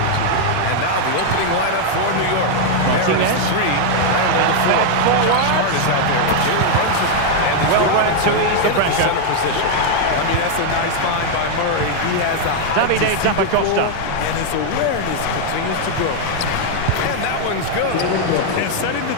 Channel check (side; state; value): both; different; correlation 0.00